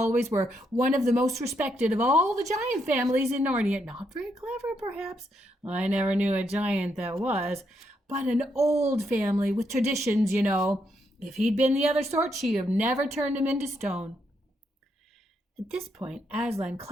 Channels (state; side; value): normal; both; correlation 0.78